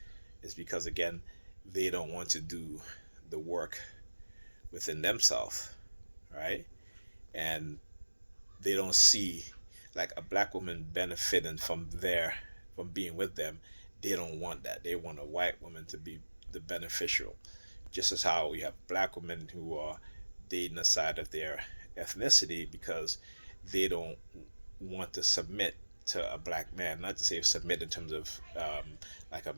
is because, again, they don't want to do the work within themselves, right? And they don't see like a black woman benefiting from being with them. they don't want that. They want a white woman to be the beneficial, just as how we have black women who are dating aside of their ethnicity because they don't want to submit to a black man. Not to say submit in terms of like a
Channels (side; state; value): both; inverted; correlation -1.00